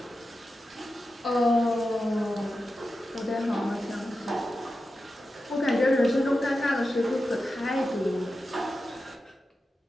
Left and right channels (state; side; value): normal; both; correlation 0.91